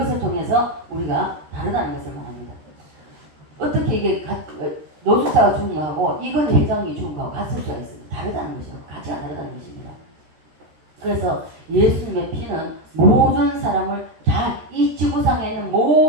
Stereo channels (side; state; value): left; late; 13 ms